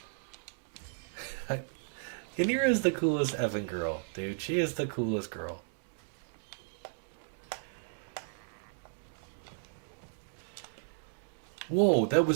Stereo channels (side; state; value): left; silent; digital silence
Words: Yanira is the coolest effing girl, dude. She is the coolest girl. Whoa, that